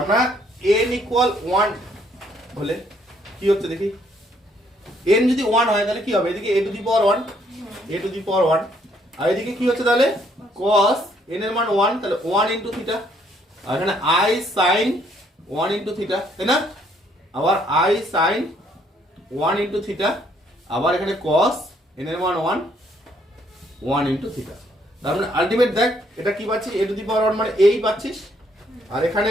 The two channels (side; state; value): both; normal; correlation 0.68